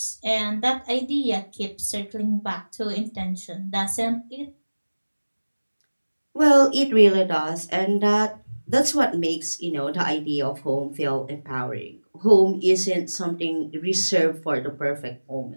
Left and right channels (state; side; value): inverted; both; correlation -1.00